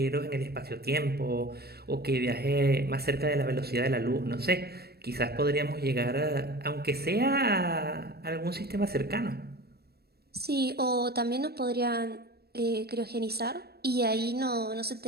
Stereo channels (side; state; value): left; late; 0.46 ms